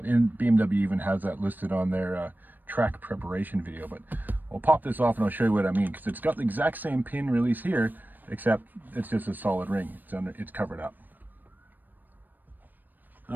And BMW even has that listed on their track preparation video. But we'll pop this off and I'll show you what I mean, because it's got the exact same pin release here, except it's just a solid ring. It's covered up.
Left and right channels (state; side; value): late; left; 0.089 ms